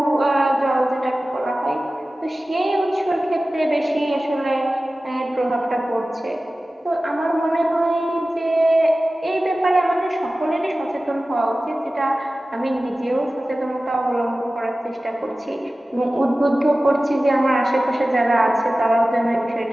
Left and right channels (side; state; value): both; normal; correlation 0.96